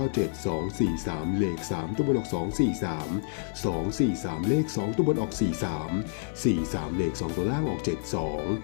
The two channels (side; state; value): right; silent; digital silence